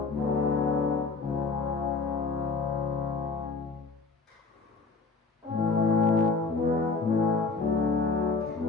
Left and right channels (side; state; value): right; quieter; 4.2 dB